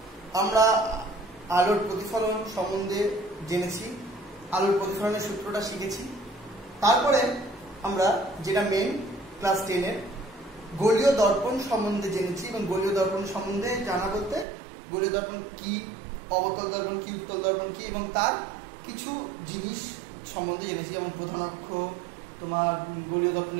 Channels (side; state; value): left; drops out; at 14.5 s